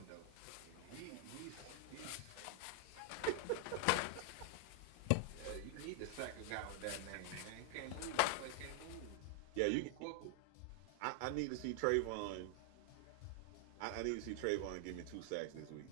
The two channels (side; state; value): both; different; correlation 0.00